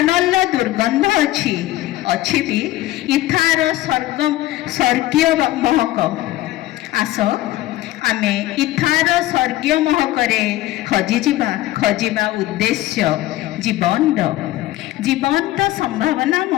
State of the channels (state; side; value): quieter; right; 16.1 dB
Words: ଦୁର୍ଗନ୍ଧ ଅଛି, ଅଛି ବି ଇଥାର ସ୍ୱର୍ଗୀୟ ମହକ। ଆସ ଆମେ ଇଥାର ସ୍ୱର୍ଗୀୟ ମହକରେ ହଜିଯିବା, ଖୋଜିବା ଉଦ୍ଦେଶ୍ୟ ଜୀବନର, ଜୀବନର